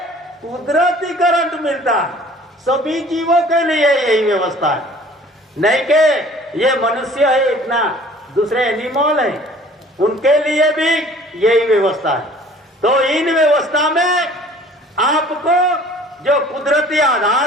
कुदरती करंट मिलता है। सभी जीवों के लिए यही व्यवस्था है, नहीं कि ये मनुष्य है इतना, दूसरे एनिमल है उनके लिए भी यही व्यवस्था है। तो इन व्यवस्था में आपको जो कुदरती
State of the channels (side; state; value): both; normal; correlation 0.51